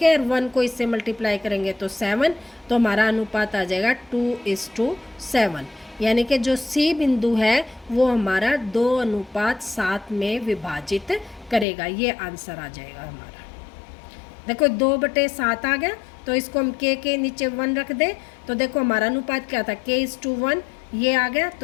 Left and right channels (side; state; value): right; drops out; at 11.7 s